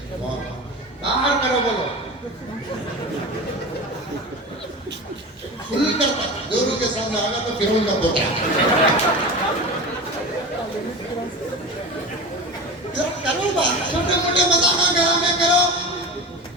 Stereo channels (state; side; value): normal; both; correlation 0.29